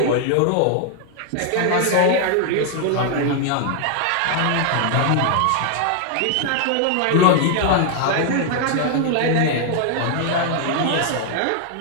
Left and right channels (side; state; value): both; different; correlation 0.00